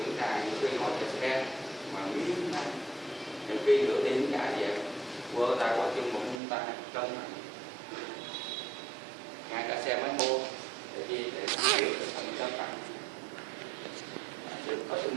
ta những khi ngồi trên xe mà miếng này, những khi nửa đêm cả về vơ tay qua chân một ta cân này, ngay cả xe máy mua để chi để hiểu được phần cân nặng, có sự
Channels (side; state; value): left; drops out; at 6.4 s